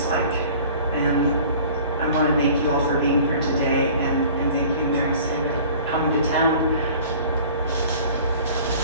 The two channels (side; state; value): both; inverted; correlation -0.47